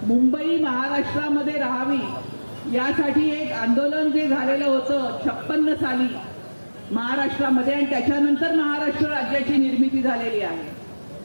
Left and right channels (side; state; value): both; inverted; correlation -1.00